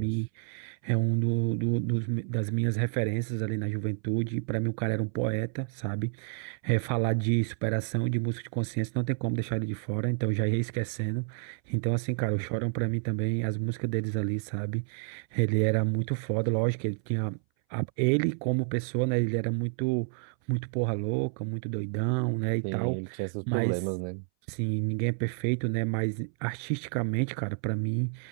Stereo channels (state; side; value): silent; left; 58 dB below the other